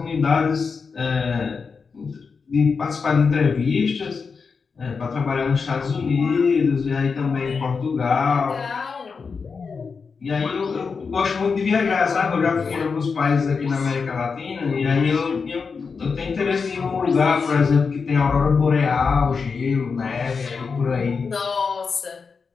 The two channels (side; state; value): right; quieter; 5.2 dB